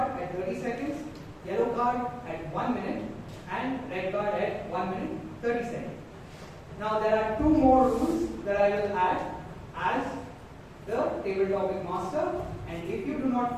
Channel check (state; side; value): identical; both; correlation 1.00